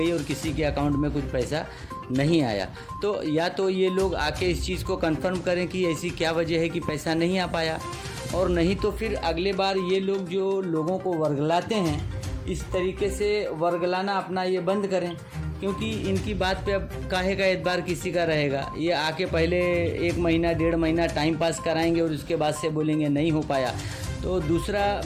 और किसी के अकाउंट में कुछ पैसा नहीं आया। तो या तो ये लोग आके इस चीज़ को कंफर्म करें कि ऐसी क्या वजह है कि पैसा नहीं आ पाया, और नहीं तो फिर अगले बार ये लोग जो लोगों को वर्गलाते हैं इस तरीके से वर्गलाना अपना ये बंद करें, क्योंकि इनकी बात पे अब काहे का एतबार किसी का रहेगा। ये आके पहले 1 महीना 1.5 महीना टाइम पास कराएंगे और उसके बाद से बोलेंगे नहीं हो पाया। तो दूसरा,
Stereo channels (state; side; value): identical; both; correlation 1.00